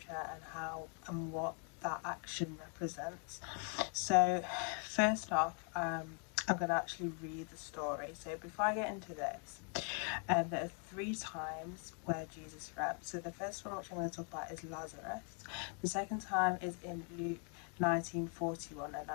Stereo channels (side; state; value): right; quieter; 40.0 dB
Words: and how and what that action represents. So first off, I'm going to actually read the story. So before I get into this, there are 3 times where Jesus wept. So the first one, which I'm going to talk about, is Lazarus. The second time is in Luke 19:41, and